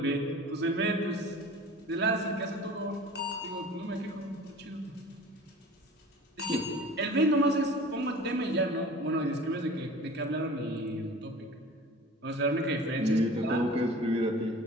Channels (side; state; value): both; normal; correlation 0.42